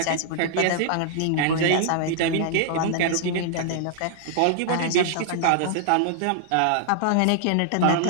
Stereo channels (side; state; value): both; different; correlation -0.01